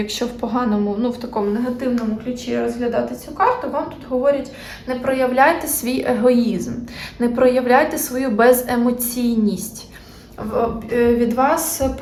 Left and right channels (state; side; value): identical; both; correlation 1.00